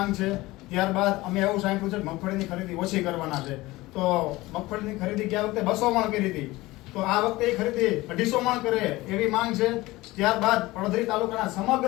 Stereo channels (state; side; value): quieter; right; 19.6 dB